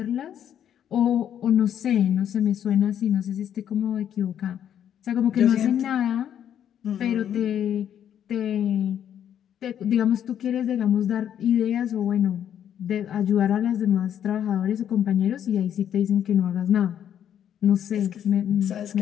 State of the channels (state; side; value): quieter; right; 9.7 dB